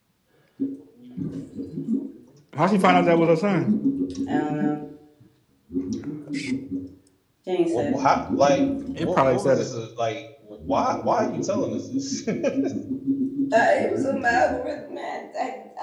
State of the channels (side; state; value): both; identical; correlation 1.00